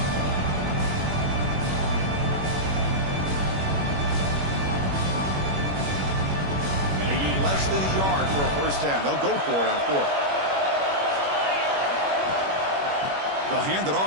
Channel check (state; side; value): late; left; 21 ms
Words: Less than a yard for a 1st down. They'll go for it on 4th. They'll hand it